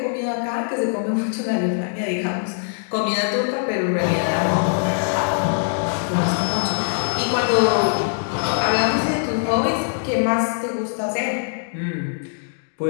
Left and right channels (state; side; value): silent; right; digital silence